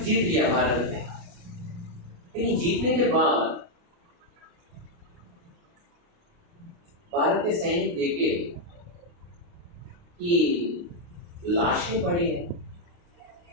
जीत लिया भारत ने। लेकिन जीतने के बाद भारत के सैनिक देखे कि लाशें पड़ी हैं,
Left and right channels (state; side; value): late; left; 29 ms